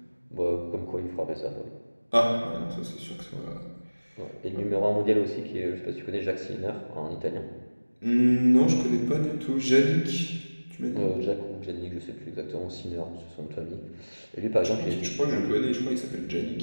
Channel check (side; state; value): both; inverted; correlation -1.00